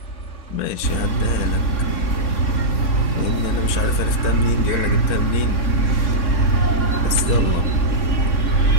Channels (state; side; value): late; right; 3.6 ms